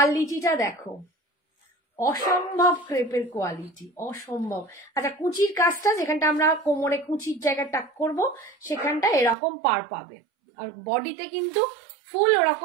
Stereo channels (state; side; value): drops out; left; at 9.3 s